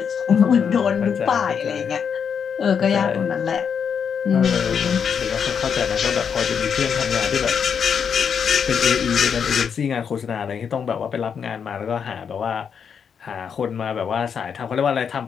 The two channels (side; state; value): right; quieter; 7.0 dB